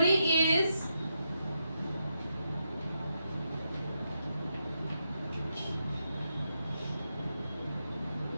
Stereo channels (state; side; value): inverted; both; correlation -0.83